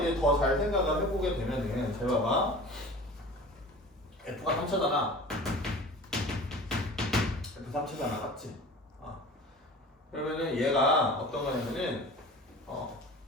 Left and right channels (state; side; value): normal; both; correlation 0.39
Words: 더 잘 생각을 해보게 되면은 잘 봐봐, f가 3차잖아. f 3차잖아, 맞지? 그러면은 얘가 어떤 거냐면은